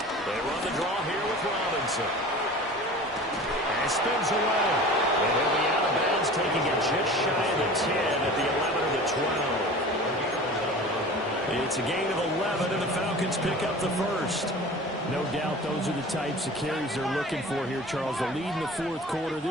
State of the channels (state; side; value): normal; both; correlation 0.39